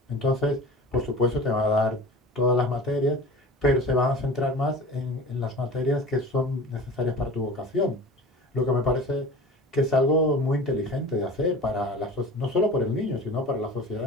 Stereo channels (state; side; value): normal; both; correlation 0.37